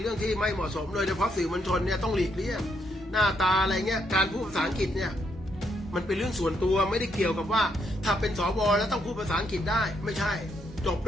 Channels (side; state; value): both; normal; correlation 0.76